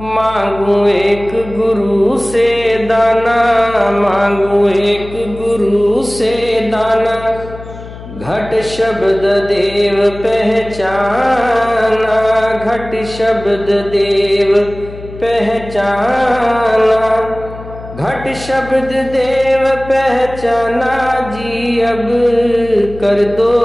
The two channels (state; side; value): noise; left; hum, 14 dB below the sound